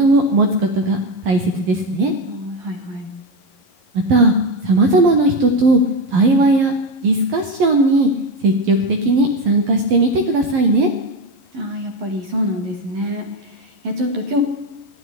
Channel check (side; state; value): left; late; 11 ms